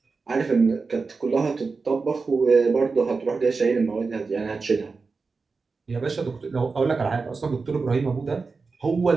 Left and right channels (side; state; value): left; quieter; 4.4 dB